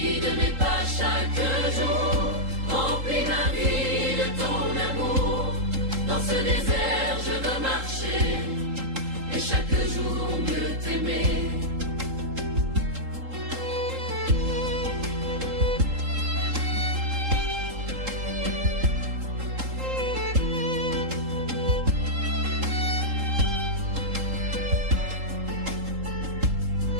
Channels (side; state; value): left; late; 3.8 ms